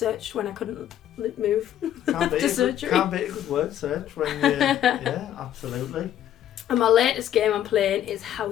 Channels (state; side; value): quieter; right; 11.3 dB